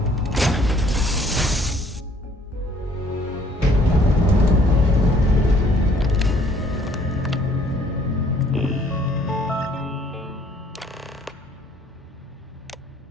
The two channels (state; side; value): normal; both; correlation 0.61